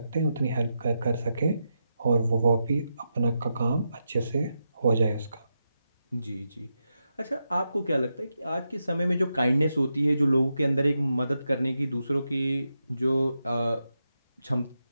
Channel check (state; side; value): inverted; both; correlation -0.86